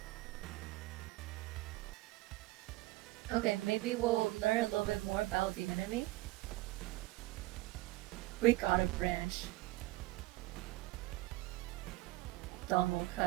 okay, maybe we'll learn a little bit more about the enemy. We got a branch. Dawn will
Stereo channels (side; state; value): left; quieter; 19.6 dB